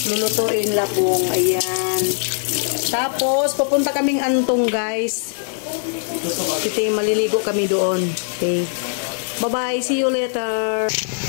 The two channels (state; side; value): silent; right; digital silence